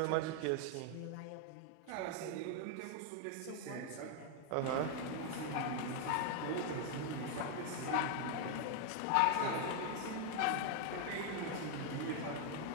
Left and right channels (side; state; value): both; different; correlation 0.00